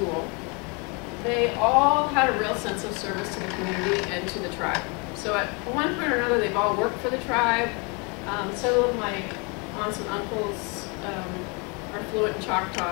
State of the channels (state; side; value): quieter; right; 31.7 dB